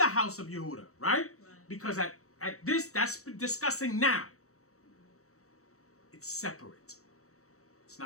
house of Yehuda, right? Because at this, that's discussing now. It's separate. It's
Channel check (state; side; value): late; right; 0.65 ms